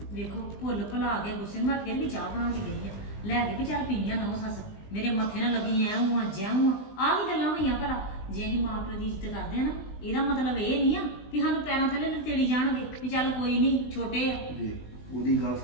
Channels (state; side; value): late; right; 20 ms